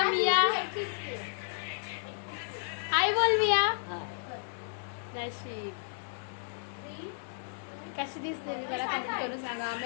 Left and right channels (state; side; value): silent; right; digital silence